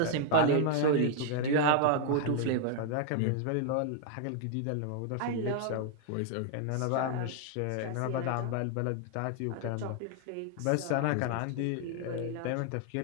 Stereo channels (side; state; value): both; different; correlation 0.00